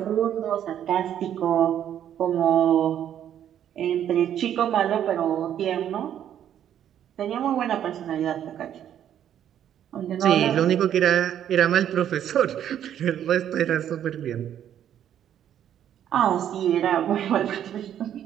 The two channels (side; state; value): left; quieter; 10.2 dB